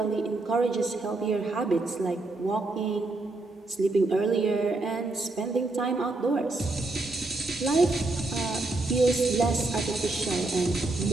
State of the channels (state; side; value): quieter; left; 3.1 dB